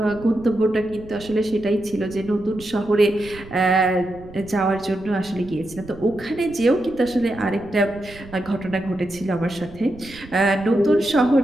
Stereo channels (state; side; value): noise; right; rumble, 18 dB below the sound